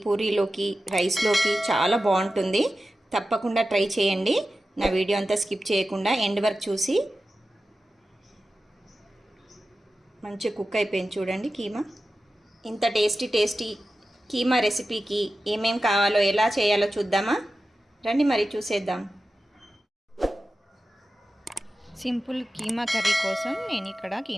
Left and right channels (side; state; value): both; normal; correlation 0.93